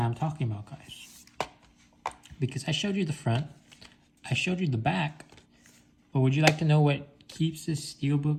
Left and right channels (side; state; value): both; identical; correlation 1.00